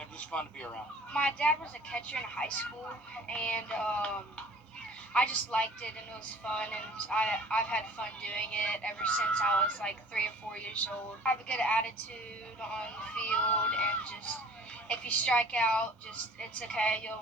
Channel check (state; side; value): normal; both; correlation 0.49